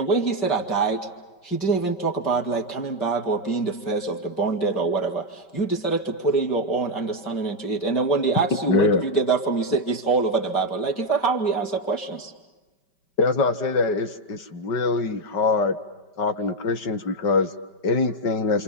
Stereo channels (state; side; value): late; right; 5.2 ms